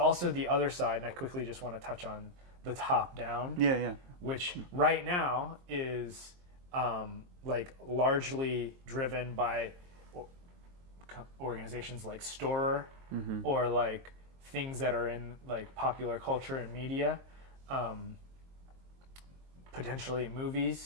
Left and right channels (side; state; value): left; late; 22 ms